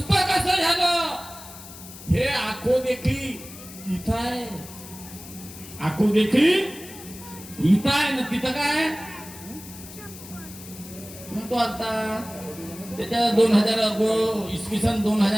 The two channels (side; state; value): left; noise; hiss, 16 dB below the sound